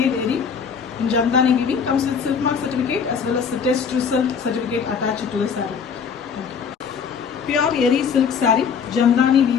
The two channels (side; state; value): right; quieter; 6.5 dB